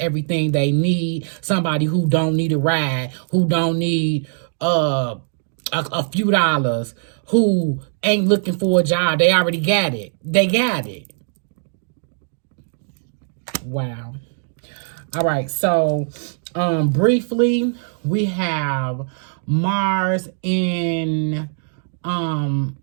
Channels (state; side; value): silent; left; 64 dB below the other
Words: they need. Somebody who don't need a ride. Who don't need a few dollars. Who ain't looking for a job. They already got it. They got it. Wow. All right. So, briefly, we have Mars